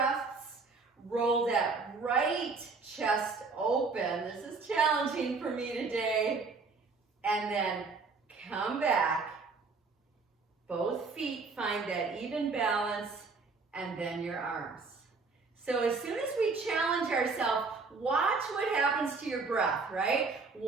Roll that right chest open. This is challenging for me today. And then come back. Both feet find that even balance, and then your arms. So as soon as we challenge ourselves, watch what happens to your breath, right?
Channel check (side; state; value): left; quieter; 4.3 dB